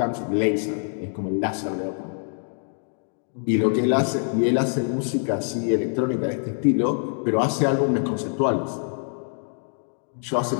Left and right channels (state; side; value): silent; right; 58 dB below the other